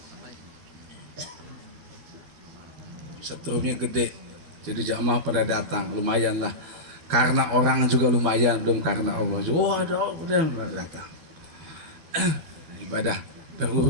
Setrumnya gede, jadi jamaah pada datang, lumayan lah. Karena orang juga lumayan, belum karena Allah. Oh ada orang pada datang. Ibadah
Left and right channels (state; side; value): late; left; 13 ms